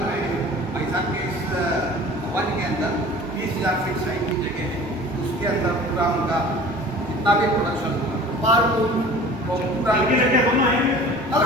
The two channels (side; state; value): both; normal; correlation 0.44